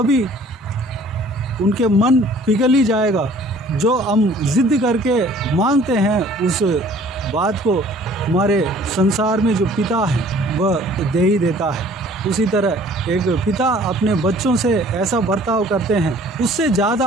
उनके मन पिघल ही जाएगा। जो हम जिद करके मांगते हैं उस बात को हमारे संसार में जो पिता है वह दे ही देता है। उसी तरह एक पिता अपने बच्चों से ऐसा बर्ताव करते हैं, उससे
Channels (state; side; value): normal; both; correlation 0.53